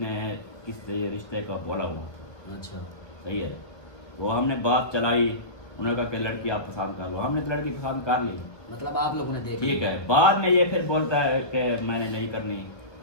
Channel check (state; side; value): late; right; 1.4 ms